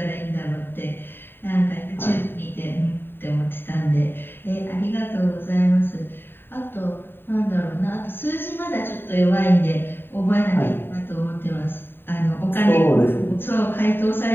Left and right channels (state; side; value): late; right; 0.10 ms